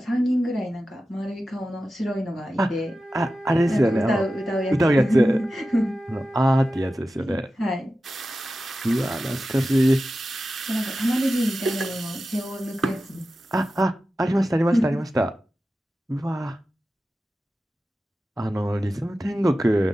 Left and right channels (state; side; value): normal; both; correlation 0.93